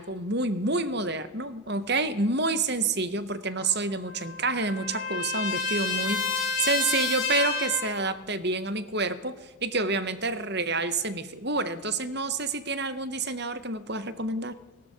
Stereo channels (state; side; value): normal; both; correlation 0.07